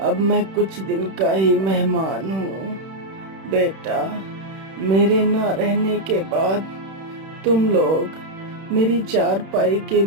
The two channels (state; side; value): late; left; 31 ms